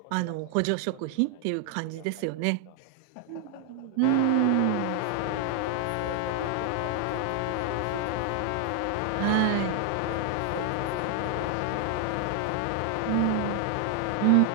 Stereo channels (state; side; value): different; both; correlation 0.00